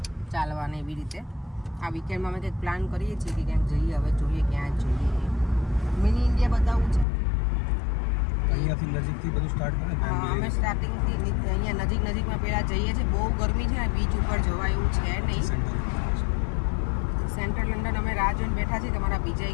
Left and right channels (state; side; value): drops out; right; at 7.1 s